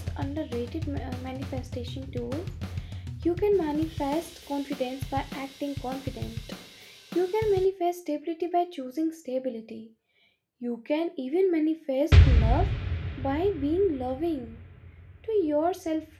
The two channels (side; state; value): both; identical; correlation 1.00